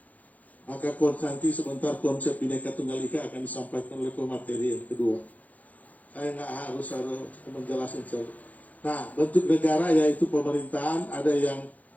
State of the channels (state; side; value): late; right; 0.076 ms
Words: Maka nanti sebentar konsep Bhinneka Tunggal Ika akan disampaikan oleh pemateri yang kedua. Saya nggak harus menjelaskan. Nah, bentuk negara yaitu pemerintahan, ada yang